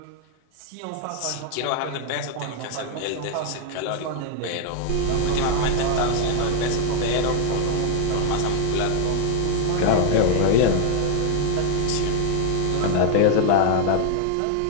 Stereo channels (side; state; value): both; different; correlation 0.00